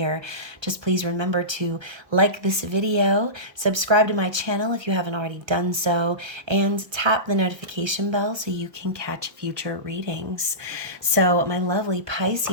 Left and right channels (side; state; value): left; late; 1.3 ms